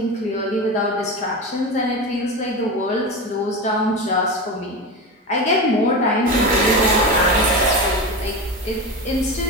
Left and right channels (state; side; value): normal; both; correlation 0.23